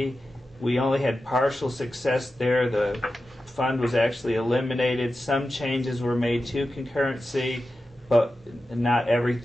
We only had partial success there. The fund was actually eliminated. Some changes were made to concurrency, but not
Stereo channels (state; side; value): normal; both; correlation 0.92